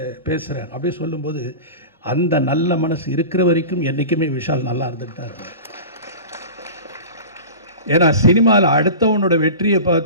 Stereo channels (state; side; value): inverted; both; correlation -0.33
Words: பேசுகிறேன் அப்படி சொல்லும்போது அந்த நல்ல மனசு இருக்கிற வரைக்கும் என்றைக்குமே விஷால் நல்லா இருந்துட்டு தான் இருக்கும். ஏன்னா சினிமாவில் அடுத்தவனோட வெற்றியை